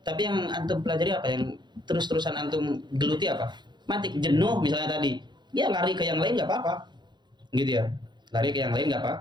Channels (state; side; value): late; left; 0.21 ms